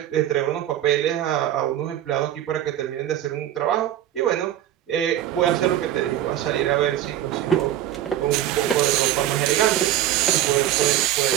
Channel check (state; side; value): quieter; left; 12.1 dB